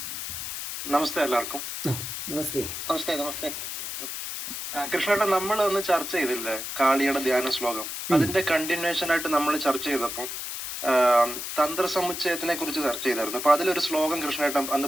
നമസ്തേ എല്ലാവർക്കും. നമസ്തേ. നമസ്തേ നമസ്തേ. കൃഷ്ണേട്ടൻ, നമ്മൾ ഒന്ന് ചർച്ച ചെയ്തില്ലേ കാളിയുടെ ധ്യാന ശ്ലോകം? അതിന്റെ കണ്ടിന്യൂഷൻ ആയിട്ട് നമ്മൾ ചർച്ച ചെയ്തപ്പോൾ തന്ത്രസമുച്ചയത്തിനെ കുറിച്ച് ചർച്ച ചെയ്തായിരുന്നു. അപ്പൊ അതിലൊരു ശ്ലോകം കൃഷ്ണേട്ടൻ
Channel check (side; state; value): left; noise; hiss, 6 dB below the sound